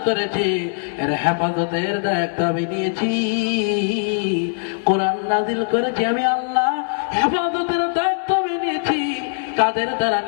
করেছি, এর হেফাজতের দায়িত্ব আমি নিয়েছি। কোরআন নাযিল করেছি আমি আল্লাহ, হেফাজতের দায়িত্ব আমি নিয়েছি। কাদের দ্বারা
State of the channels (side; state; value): right; silent; digital silence